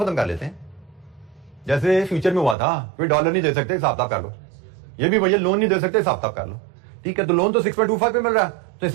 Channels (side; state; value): left; drops out; at 2.6 s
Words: कर लेते हैं, जैसे फ्यूचर में हुआ था, कोई डॉलर नहीं दे सकते, हिसाब कर लो। ये भी भैया लोन नहीं दे सकते, हिसाब कर लो। ठीक है, तो लोन तो 6.25 पे मिल रहा है, तो